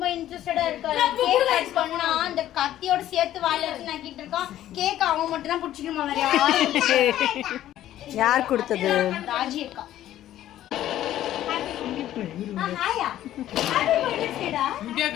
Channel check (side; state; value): right; quieter; 12.8 dB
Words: இன்ட்ரெஸ்டடா இருக்காரு. கேக் கட் பண்ணா அந்த கத்தியோட சேர்த்து வாயில வச்சு நக்கிட்டு இருக்கான். கேக் அவன் மட்டும் தான் புடிச்சிக்கணுமா வேற யார் கொடுத்தது? ராஜி அக்கா. ஹாயா ஹாப்பி பர்த்டே சேடா.